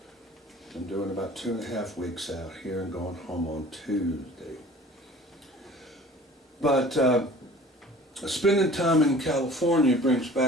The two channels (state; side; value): normal; both; correlation 0.46